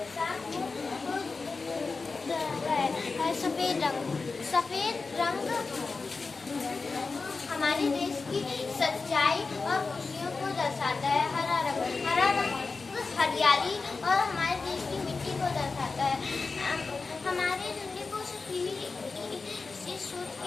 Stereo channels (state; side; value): quieter; right; 4.2 dB